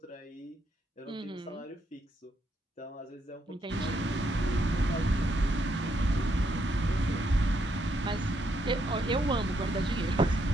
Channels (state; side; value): normal; both; correlation 0.76